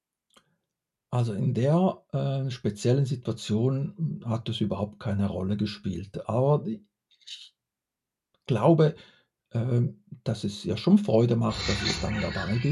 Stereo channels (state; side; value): identical; both; correlation 1.00